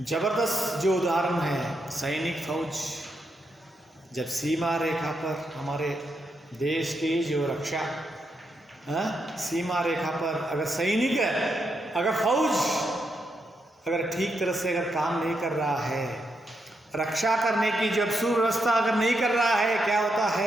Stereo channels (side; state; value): both; normal; correlation 0.82